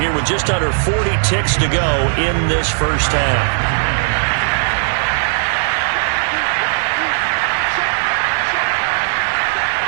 with just under 40 ticks to go in this first half.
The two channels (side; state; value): left; silent; digital silence